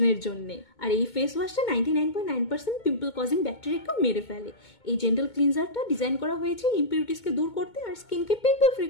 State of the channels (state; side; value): late; right; 2.2 ms